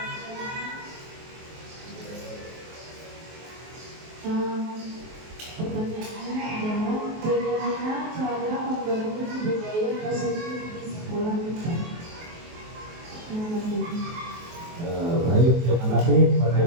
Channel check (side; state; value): left; late; 23 ms